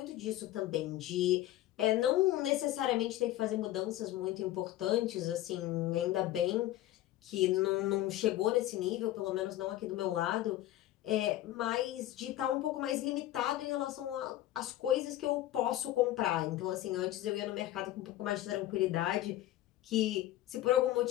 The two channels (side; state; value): right; quieter; 14.4 dB